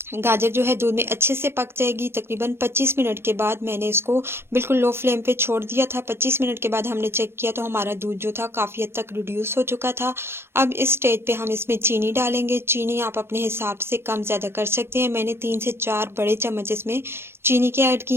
गाजर जो है दूध में अच्छे से पक जाएगी। तकरीबन 25 मिनट के बाद मैंने इसको बिल्कुल लो फ्लेम पे छोड़ दिया था। 25 मिनट के बाद हमने चेक किया तो हमारा दूध जो था काफ़ी हद तक रिड्यूस हो चुका था। अब इस स्टेज पे हम इसमें चीनी डालेंगे। चीनी आप अपने हिसाब से कम ज़्यादा कर सकते हैं। मैंने 3 से 4 बड़े चम्मच इसमें चीनी के ऐड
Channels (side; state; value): left; late; 0.12 ms